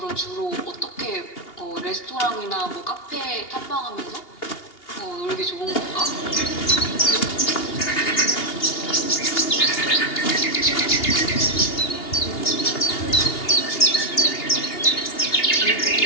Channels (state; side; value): late; right; 2.8 ms